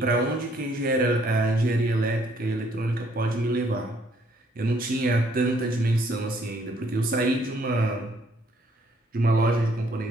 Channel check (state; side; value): normal; both; correlation 0.65